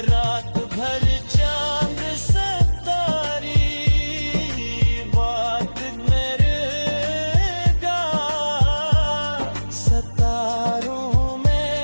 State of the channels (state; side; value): inverted; both; correlation -1.00